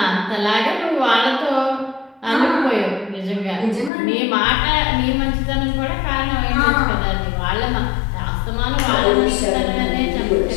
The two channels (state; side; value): drops out; right; at 3.9 s